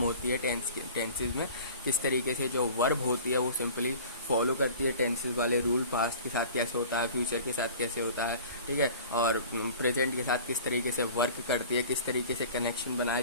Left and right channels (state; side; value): inverted; both; correlation -0.43